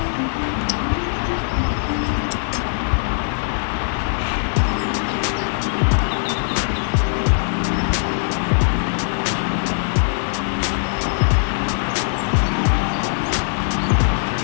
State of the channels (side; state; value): right; silent; 65 dB below the other